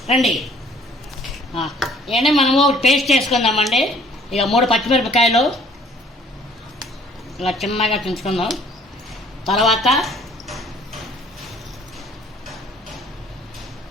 రండి. ఇవన్నీ మనము టేస్ట్ చేసుకుందామండి. ఇక 3 పచ్చిమిరపకాయలు ఇలా చిన్నగా తుంచుకుందాం. తర్వాత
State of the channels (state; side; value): normal; both; correlation 0.56